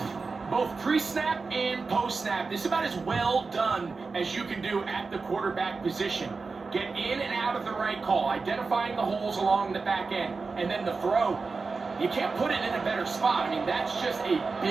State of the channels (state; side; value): quieter; left; 4.3 dB